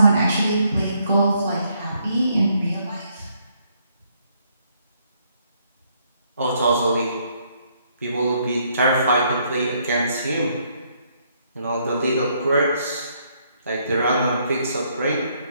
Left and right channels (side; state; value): both; inverted; correlation -0.71